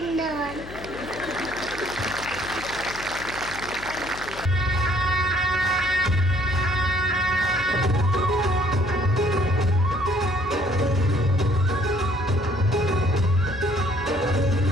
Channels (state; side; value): noise; left; hum, 14 dB below the sound